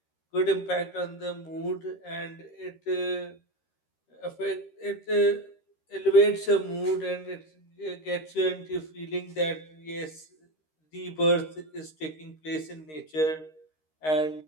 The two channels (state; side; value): late; right; 13 ms